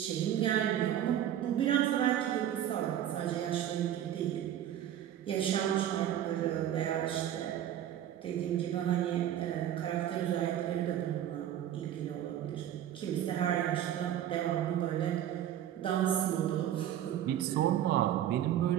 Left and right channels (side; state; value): left; quieter; 11.1 dB